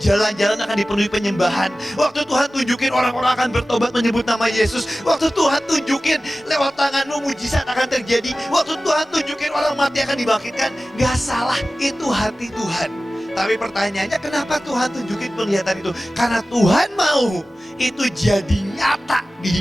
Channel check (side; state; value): both; normal; correlation 0.96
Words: akan dipenuhi penyembahan. Waktu Tuhan tunjukin orang-orang akan bertobat menyebut nama Yesus. Waktu Tuhan tunjukin lewat tanganmu mujizat akan terjadi. Waktu Tuhan tunjukin orang mati akan dibangkitkan. Gak salah, itu hati Tuhan. Tapi pertanyaannya, kenapa Tuhan tunjukin penglihatan itu? Karena Tuhan mau itu jadi nyata